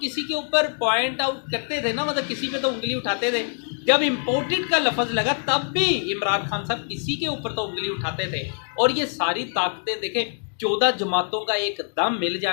के ऊपर पॉइंट आउट करते थे ना, मतलब किसी पे तो उंगली उठाते थे। जब इम्पोर्टेड का लफ्ज़ लगा तब भी इमरान खान साहब किसी के ऊपर तो उंगली उठाते थे। और ये सारी ताकतें देखें, 14 जमातों का एक दम मिल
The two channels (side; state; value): right; silent; 55 dB below the other